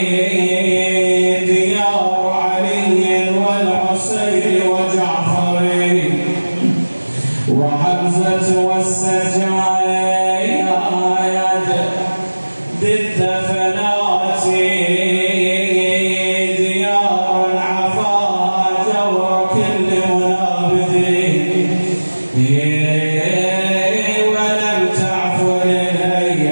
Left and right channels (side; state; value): both; inverted; correlation -1.00